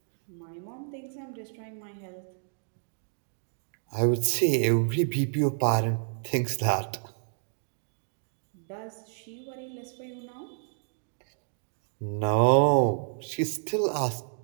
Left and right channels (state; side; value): silent; left; digital silence